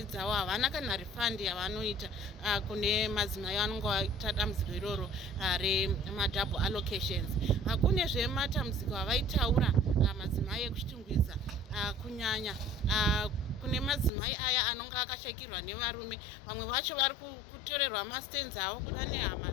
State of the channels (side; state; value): right; drops out; at 14.1 s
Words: dzavo, havana kana refund yavanoita kune madzimai vanonga vaita dambudziko iroro remadouble allocations. Kune zvematambudziko avaitaura madzimai ekuchitungwiza kunyanya kune madzimai aya anonga akashakirwa nevarume, vamwe vacho vari kutorerwa mastands avo kuda nehama